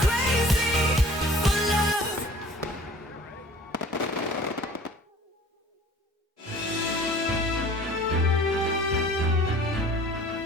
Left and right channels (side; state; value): both; normal; correlation 0.48